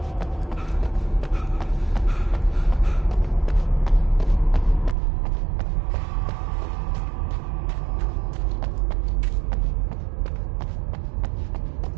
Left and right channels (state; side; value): drops out; left; at 5.0 s